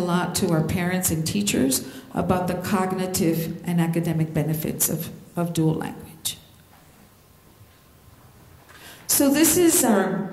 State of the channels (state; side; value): identical; both; correlation 1.00